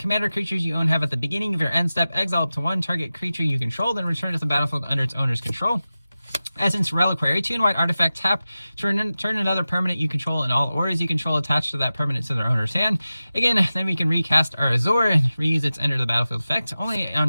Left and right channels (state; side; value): inverted; both; correlation -0.95